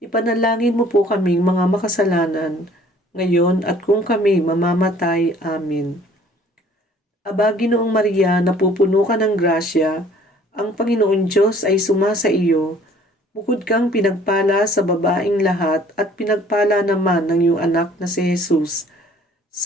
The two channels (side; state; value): both; normal; correlation 0.55